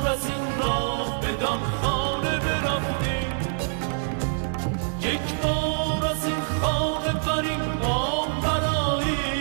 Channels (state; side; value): silent; left; 61 dB below the other